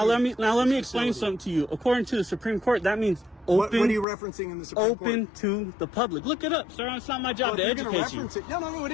let me explain something to you. According to the Supreme Court, that means What are open you referencing in the Supreme Court? open to the public. Look it up, sir. It's not my job Well, to if you're gonna educate you. reference it, no, it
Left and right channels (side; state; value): right; drops out; at 4.0 s